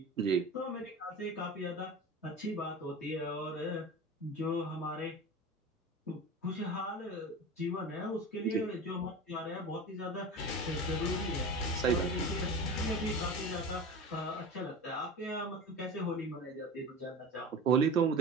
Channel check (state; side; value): normal; both; correlation 0.32